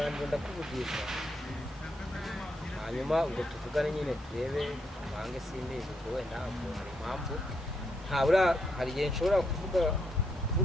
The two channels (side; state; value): both; normal; correlation 0.78